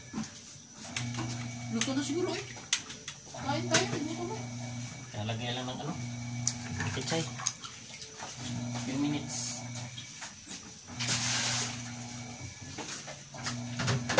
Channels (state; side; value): identical; both; correlation 1.00